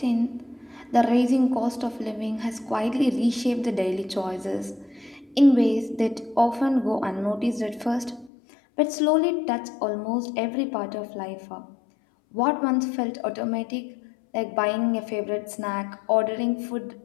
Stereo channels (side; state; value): right; drops out; at 8.3 s